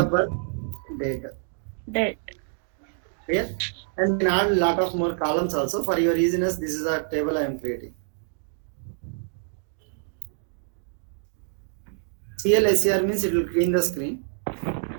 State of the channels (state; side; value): silent; left; digital silence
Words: birth. Date. Clear? And then add a lot of more columns also. For your easiness, this is a table I am creating. CLSCR means it will clean the screen.